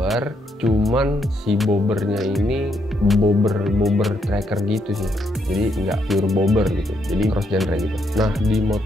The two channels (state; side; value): normal; both; correlation 0.76